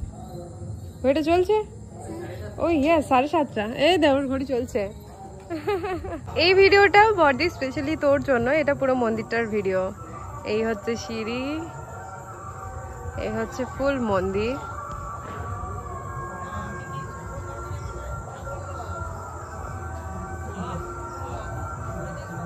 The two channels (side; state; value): both; identical; correlation 1.00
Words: ঘড়িটা চলছে? ওই ইয়ে 7:30। এই দেওয়ার ঘড়ি চলছে। এই ভিডিওটা বডি স্পেশালি তোর জন্য, এটা পুরো মন্দিরটার ভিডিও। এই হচ্ছে সিঁড়ি, এই হচ্ছে ফুল মন্দির।